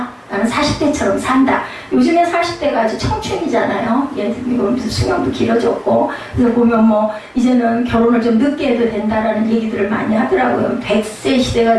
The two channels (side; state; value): both; identical; correlation 1.00